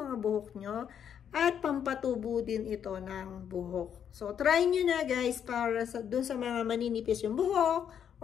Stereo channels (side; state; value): right; quieter; 8.6 dB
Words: buhok nyo. At pampatubo din ito ng buhok. So, try nyo na guys para dun sa mga maninipis yung buhok